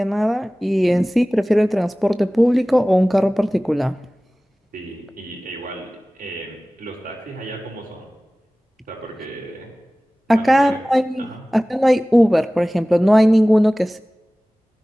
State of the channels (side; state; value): both; normal; correlation 0.98